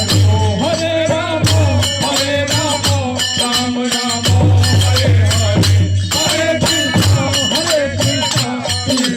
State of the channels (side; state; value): both; identical; correlation 1.00